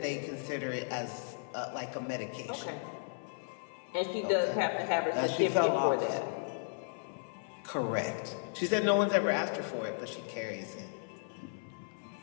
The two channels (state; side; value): silent; right; 54 dB below the other